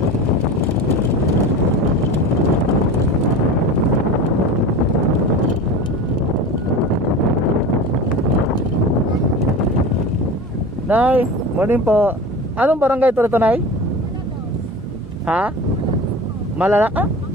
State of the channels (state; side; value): normal; both; correlation 0.32